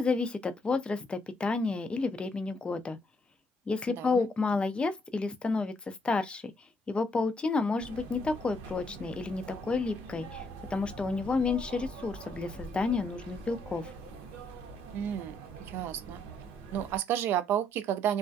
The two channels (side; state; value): both; normal; correlation 0.72